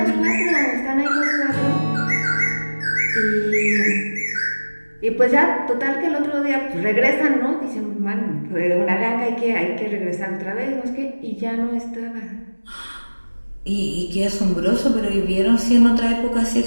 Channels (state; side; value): inverted; both; correlation -1.00